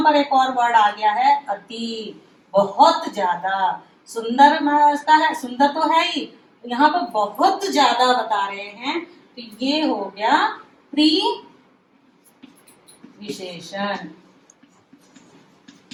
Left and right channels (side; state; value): both; identical; correlation 1.00